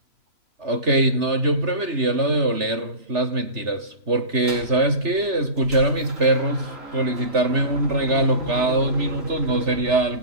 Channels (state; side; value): late; left; 3.3 ms